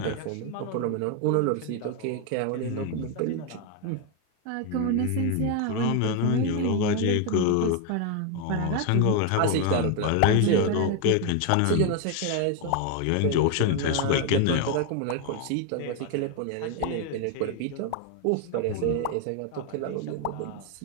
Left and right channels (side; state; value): both; different; correlation 0.01